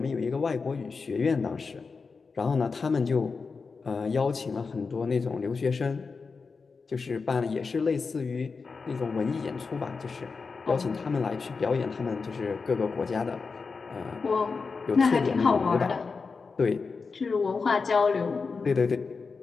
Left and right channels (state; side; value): quieter; right; 4.7 dB